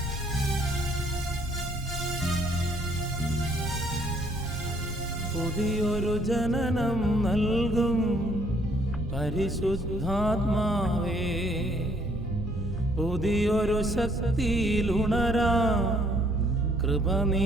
പുതിയൊരു ജനനം നൽകും പരിശുദ്ധാത്മാവേ, പുതിയൊരു ശക്തിയിലുണരാ കൃപ നീ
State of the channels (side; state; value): both; normal; correlation 0.64